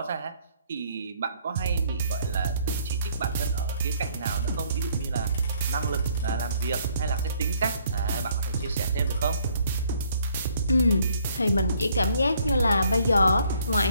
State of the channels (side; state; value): both; inverted; correlation -0.65